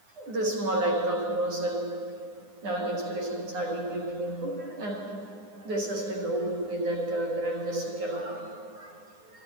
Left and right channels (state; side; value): late; left; 9.7 ms